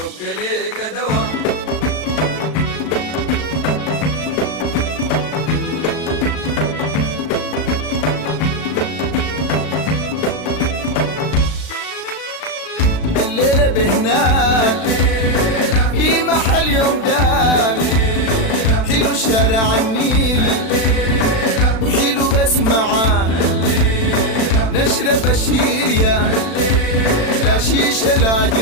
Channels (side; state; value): right; late; 36 ms